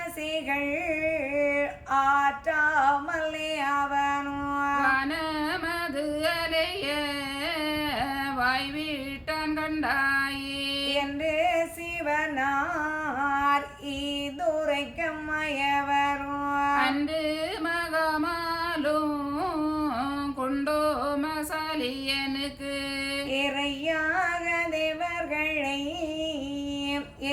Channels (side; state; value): both; identical; correlation 1.00